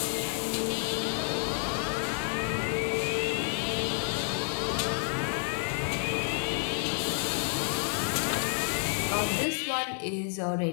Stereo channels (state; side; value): silent; right; 58 dB below the other